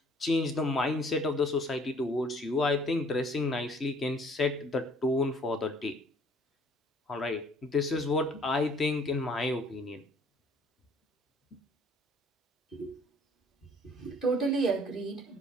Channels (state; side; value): normal; both; correlation 0.57